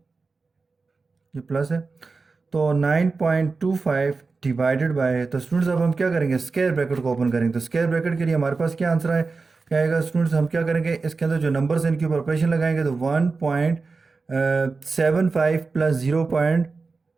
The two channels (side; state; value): left; quieter; 4.2 dB